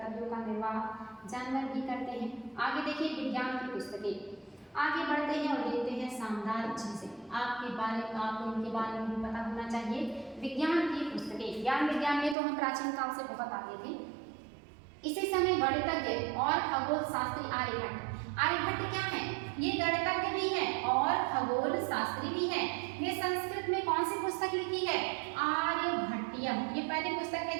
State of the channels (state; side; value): drops out; left; at 12.4 s